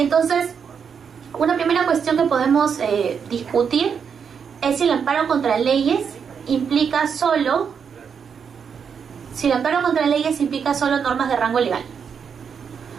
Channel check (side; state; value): left; quieter; 6.8 dB